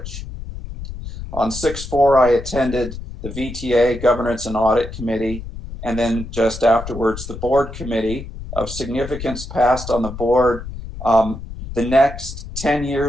On 6/4, I attended the VTA Governance and Audit Committee, and then just afterwards, the board committee. Of significance passed on the board. The next 10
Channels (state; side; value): noise; left; rumble, 10 dB below the sound